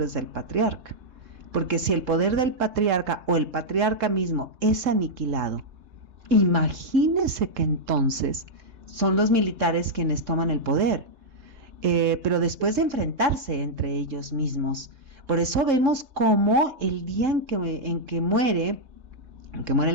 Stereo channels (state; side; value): late; left; 3.3 ms